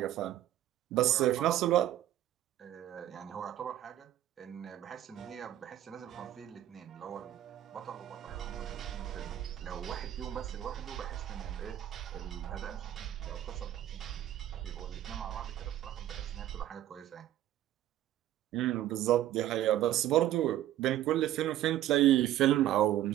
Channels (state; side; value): quieter; left; 12.7 dB